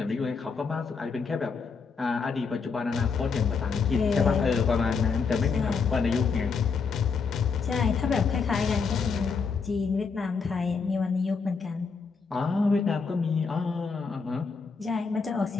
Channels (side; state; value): right; quieter; 5.2 dB